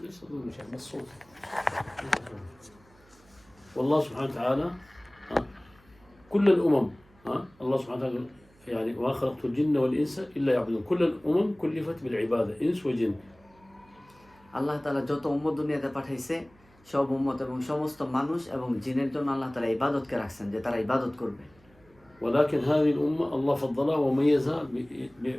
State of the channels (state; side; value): noise; right; hum, 29 dB below the sound